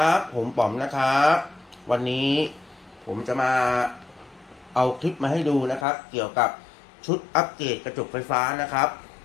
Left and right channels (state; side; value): drops out; right; at 5.9 s